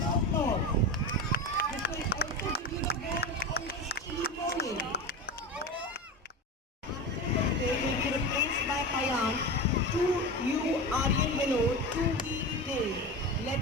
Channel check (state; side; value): normal; both; correlation 0.25